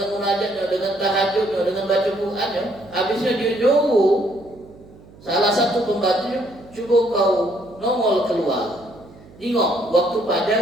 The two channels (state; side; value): noise; right; hum, 23 dB below the sound